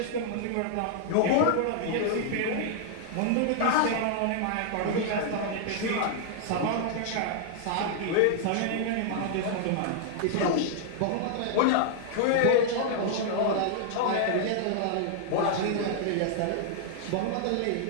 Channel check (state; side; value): different; both; correlation -0.01